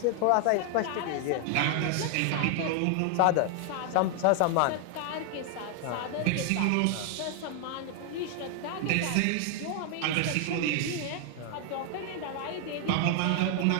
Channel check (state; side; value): different; both; correlation 0.00